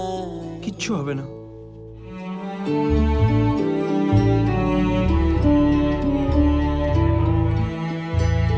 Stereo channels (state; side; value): identical; both; correlation 1.00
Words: কিচ্ছু হবে না।